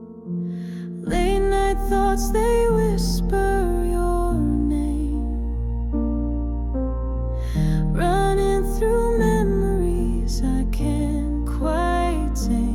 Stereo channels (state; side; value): identical; both; correlation 1.00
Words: Late night thoughts, they whisper your name, running through memories I can't quite